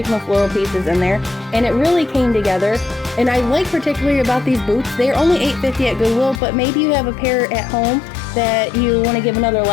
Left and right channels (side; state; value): right; drops out; at 6.4 s